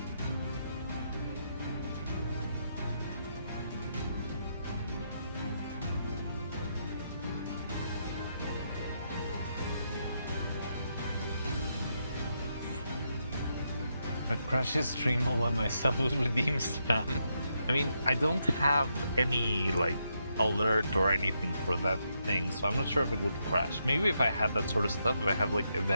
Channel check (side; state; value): both; inverted; correlation -0.80